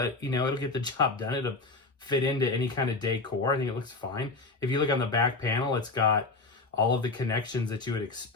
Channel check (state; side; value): quieter; right; 3.6 dB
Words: it'll get the job done. It'll fit into any kind of decor. I think it looks fine. If you look on the back panel, it's got all of the connections that you would